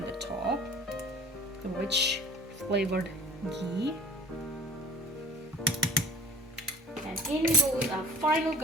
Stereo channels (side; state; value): both; normal; correlation 0.46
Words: the top, which flavored ghee. And in goes our final